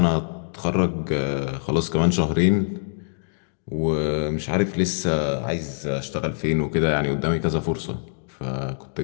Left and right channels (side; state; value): right; silent; digital silence